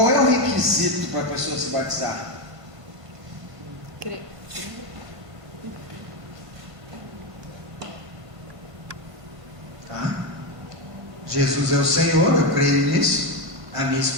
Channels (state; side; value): late; left; 1.5 ms